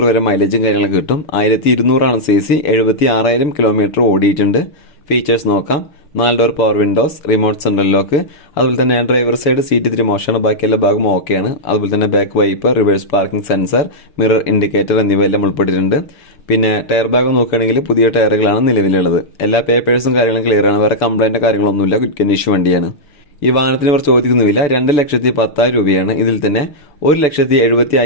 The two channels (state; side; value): late; right; 6.9 ms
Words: വരെ മൈലേജും കാര്യങ്ങളൊക്കെ കിട്ടും. 1200 cc, 76,000 കിലോമീറ്റർ ഓടിയിട്ടുണ്ട്. ഫീച്ചേഴ്സ് നോക്കാം. 4 door power Windows, remote central lock, അതുപോലെ തന്നെ ഡ്രൈവർ സൈഡ് സീറ്റ് ഇത്തിരി മോശമാണ്, ബാക്കി എല്ലാ ഭാഗം ഓക്കെയാണ്. അതുപോലെ തന്നെ back wiper, reverse parking sensor, mirror indicator എന്നിവയെല്ലാം ഉൾപ്പെട്ടിട്ടുണ്ട്. പിന്നെ ടയർ ഭാഗം നോക്കുകയാണെങ്കിൽ പുതിയ ടയറുകളാണ് നിലവിലുള്ളത്. എല്ലാ പേപ്പേഴ്സും കാര്യങ്ങളും ക്ലിയർ ആണ്. വേറെ കംപ്ലൈന്റ് കാര്യങ്ങളൊന്നുമില്ല. ഗുഡ് കണ്ടീഷൻ വണ്ടിയാണ്. ഈ വാഹനത്തിന് ഇവർ ചോദിക്കുന്നുമില്ല 2,10,10,000 രൂപയാണ്. ഇതിൽ തന്നെ